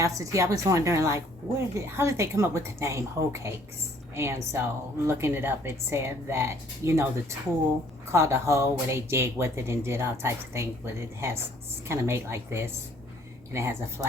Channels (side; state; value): both; normal; correlation 0.60